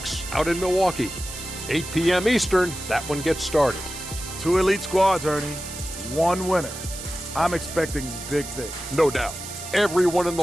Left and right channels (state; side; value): noise; right; hiss, 10 dB below the sound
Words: out in Milwaukee. 8 p.m. Eastern, that one gets started. 2 elite squads, Ernie. 1 winner. I'm expecting big things. No doubt. Everyone in the